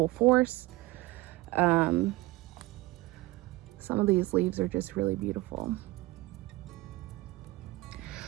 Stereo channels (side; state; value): left; quieter; 20.2 dB